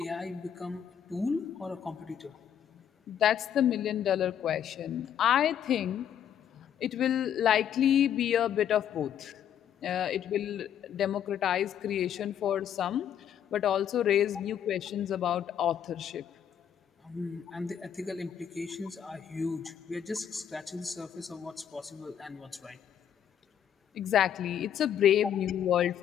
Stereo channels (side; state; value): right; quieter; 9.3 dB